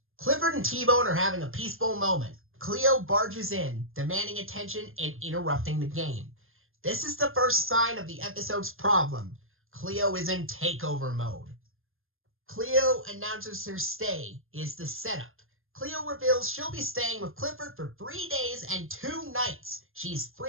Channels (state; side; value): late; left; 0.60 ms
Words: Clifford and T-Bone are having a peaceful moment. Cleo barges in, demanding attention and interrupting the game. This is the first sign of the episode's problem. Cleo is in takeover mode. Cleo announces her stay is the setup. Cleo reveals she'll be staying with Clifford for 3 days and 2 nights. She's